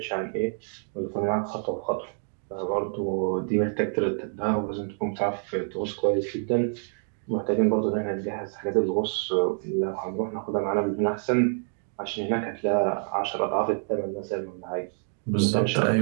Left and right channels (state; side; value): silent; left; 60 dB below the other